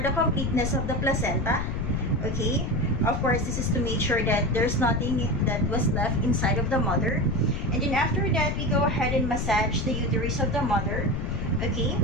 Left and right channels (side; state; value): left; noise; rumble, 2 dB below the sound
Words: the completeness of the placenta, okay. Of course, this is to make sure that there's nothing that was left inside of the mother. And then after that, we go ahead and massage the uterus of the mother, okay,